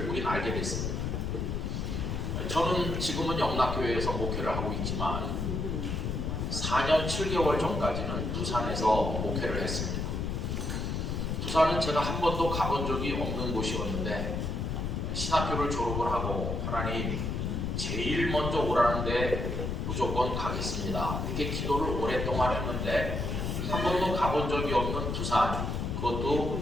우리는 알게 됐습니다. 저는 지금은 영락교회에서 목회를 하고 있지만 4년 7개월 전까지는 부산에서 목회를 했습니다. 부산은 제가 한 번도 가본 적이 없는 곳이었는데 신학교를 졸업을 하고 하나님 제일 먼저 오라는데 무조건 가겠습니다. 이렇게 기도를 오랫동안 했는데 한 번도 가본 적이 없는 부산, 그것도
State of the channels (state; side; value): noise; left; rumble, 2 dB below the sound